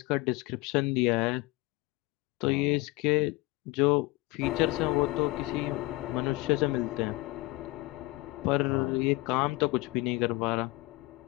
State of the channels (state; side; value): quieter; right; 21.9 dB